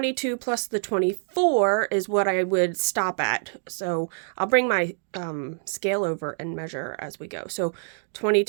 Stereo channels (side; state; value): left; silent; digital silence